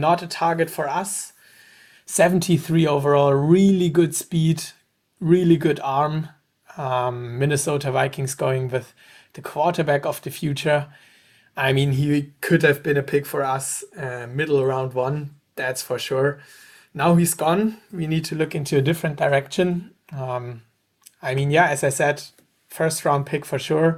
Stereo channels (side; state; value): both; identical; correlation 1.00